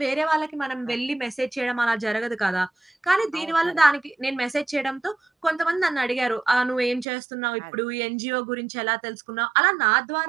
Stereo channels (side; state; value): left; drops out; at 7.1 s